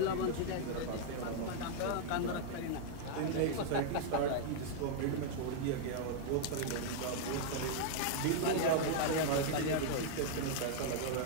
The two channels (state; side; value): different; both; correlation -0.01